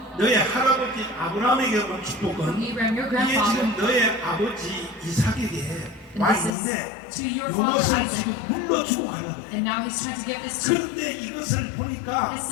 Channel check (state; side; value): drops out; right; at 6.5 s